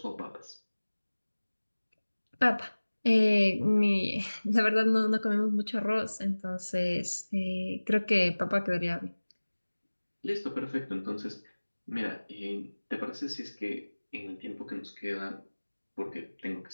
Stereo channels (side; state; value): both; inverted; correlation -1.00